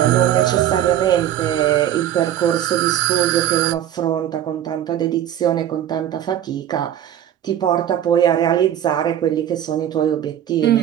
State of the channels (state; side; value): quieter; left; 10.9 dB